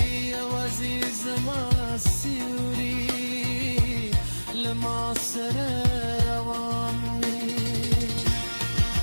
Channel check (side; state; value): both; inverted; correlation -1.00